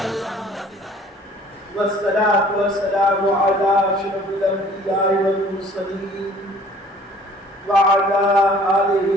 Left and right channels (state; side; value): normal; both; correlation 0.53